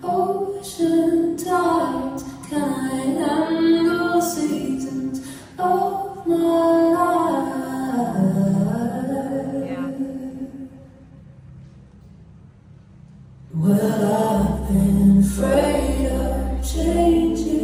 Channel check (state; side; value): identical; both; correlation 1.00